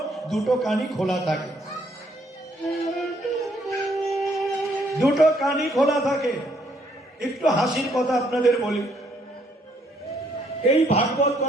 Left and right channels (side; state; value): both; normal; correlation 0.69